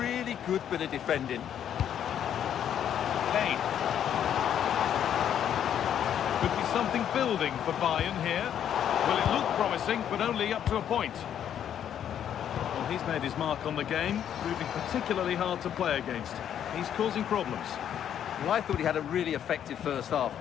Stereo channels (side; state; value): right; quieter; 9.6 dB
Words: good bit of defending. Kane. Could be something building for Bayern here. Well, it looked promising, but only up to a point. Well, he's made his mark on the game, proving particularly hard to play against. He's causing problems. Well, I thought he had a really effective first half.